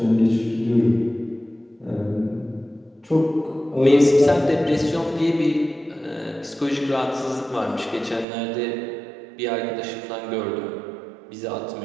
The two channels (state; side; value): drops out; left; at 8.2 s